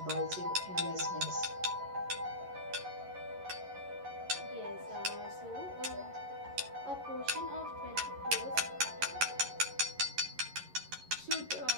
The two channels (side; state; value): left; late; 11 ms